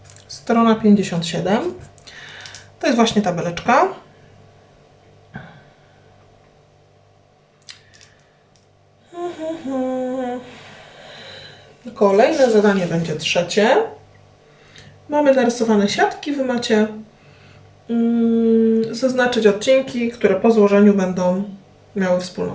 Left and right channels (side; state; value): both; identical; correlation 1.00